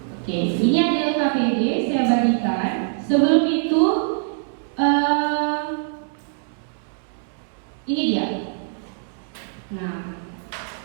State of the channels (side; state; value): left; silent; digital silence